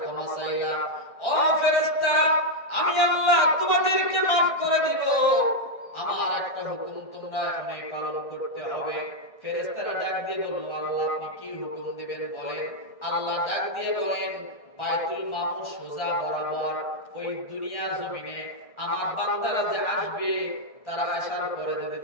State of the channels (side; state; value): right; late; 1.6 ms